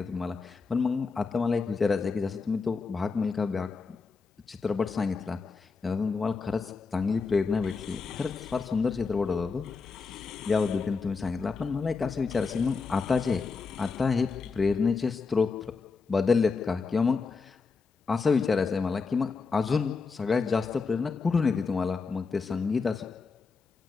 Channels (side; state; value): right; quieter; 4.6 dB